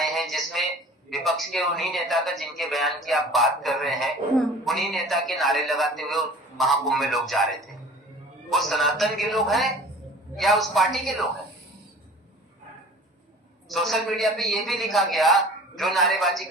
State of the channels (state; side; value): normal; both; correlation 0.44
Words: हैं जिसमें विपक्ष के उन्हीं नेता का, जिनके बयान की आप बात कर रहे हैं, उन्हीं नेता के नारे लगाते हुए महाकुंभ में लोग जा रहे थे। वो सनातन के लोग हैं या उस पार्टी के लोग हैं? सोशल मीडिया पे ये भी लिखा गया, जो नारेबाजी